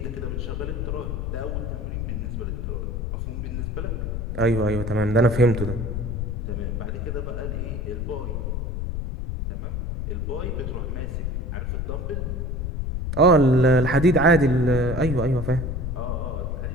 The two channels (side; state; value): left; noise; rumble, 3 dB below the sound